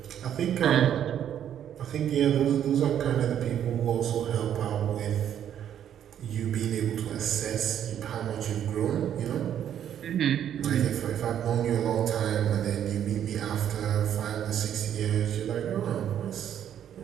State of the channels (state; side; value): quieter; left; 9.9 dB